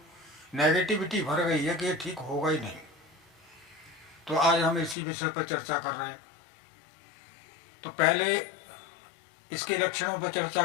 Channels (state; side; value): drops out; right; at 5.0 s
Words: नेगेटिविटी भर गई है कि ये ठीक होगा ही नहीं। तो आज हम इसी विषय पर चर्चा कर रहे हैं। तो पहले इसके लक्षणों पर चर्चा